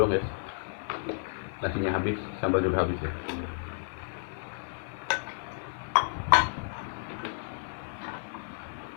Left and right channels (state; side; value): silent; right; digital silence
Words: guys. Nasinya habis, sambal juga habis ya.